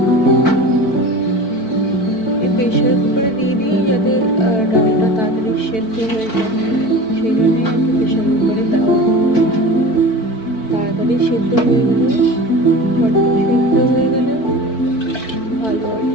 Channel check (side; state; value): right; late; 4.5 ms